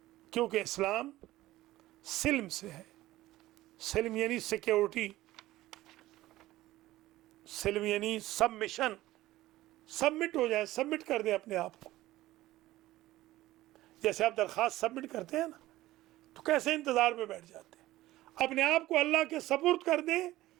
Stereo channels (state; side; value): quieter; left; 16.4 dB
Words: کیونکہ اسلام سلم سے ہے۔ سلم یعنی سیکیورٹی، سلم یعنی سبمیشن، سبمٹ ہو جائے، سبمٹ کر دیں اپنے آپ کو۔ جیسے آپ درخواست سبمٹ کرتے ہیں نا تو کیسے انتظار میں بیٹھ جاتے ہیں، اپنے آپ کو اللہ کے سپرد کر دیں،